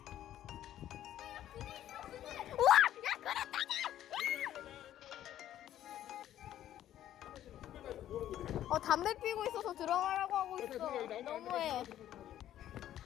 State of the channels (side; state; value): right; quieter; 12.0 dB